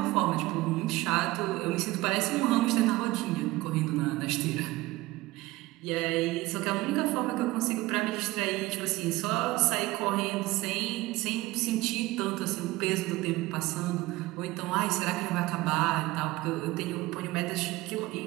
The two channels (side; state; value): left; quieter; 19.4 dB